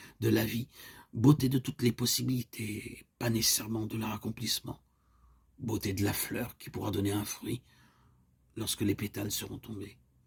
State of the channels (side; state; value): both; identical; correlation 1.00